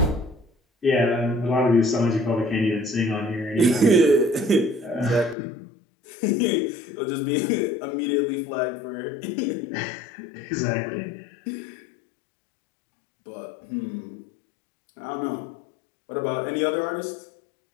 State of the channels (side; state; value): right; drops out; at 5.4 s